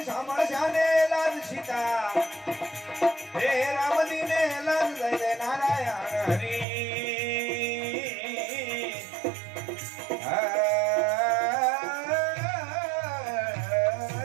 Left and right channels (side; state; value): left; drops out; at 6.7 s